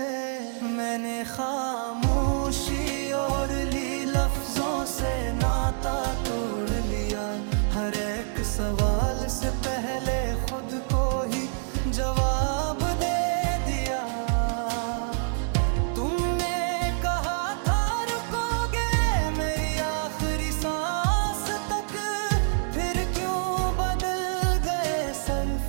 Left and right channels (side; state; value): left; silent; 60 dB below the other